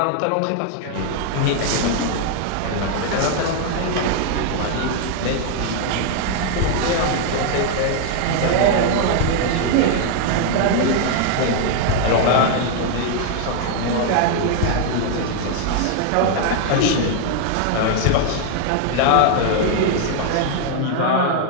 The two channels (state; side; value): different; both; correlation 0.00